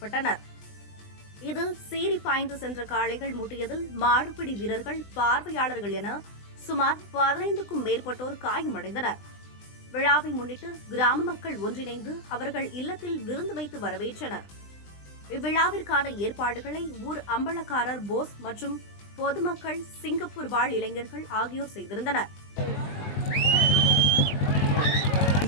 இதில் சீறி பாய்ந்து சென்ற காளைகள் முட்டியதில் மாடுபிடி வீரர்கள், பார்வையாளர்கள் என சுமார் 15க்கும் மேற்பட்டோர் காயமடைந்தனர். விழாவை முன்னிட்டு கிராம மக்கள் ஒன்றிணைந்து அவர்கள் இல்லத்தில் விருந்து வைத்து வரவேற்றனர். இவ்விழாவிற்கான ஏற்பாடுகளை ஊர் அம்பலக்காரர் போஸ் மற்றும் பொதுமக்கள், சிங்கப்பூர் வாழ் இளைஞர்கள் ஆகியோர் செய்திருந்தனர்.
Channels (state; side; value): late; right; 20 ms